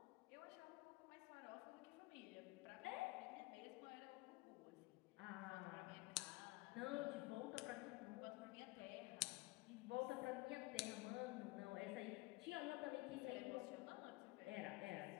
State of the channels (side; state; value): right; quieter; 22.2 dB